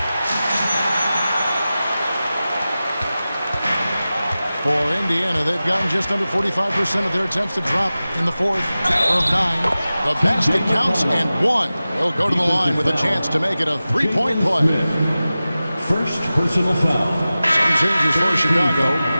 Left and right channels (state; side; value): inverted; both; correlation -0.96